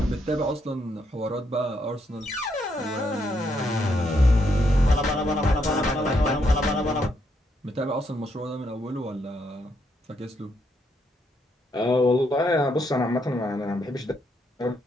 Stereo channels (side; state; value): both; normal; correlation 0.76